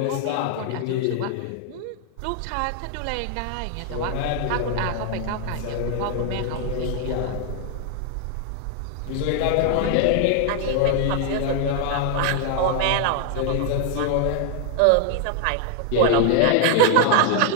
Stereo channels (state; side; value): different; both; correlation 0.00